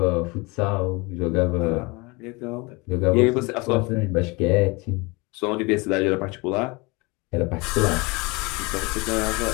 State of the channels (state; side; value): quieter; right; 26.3 dB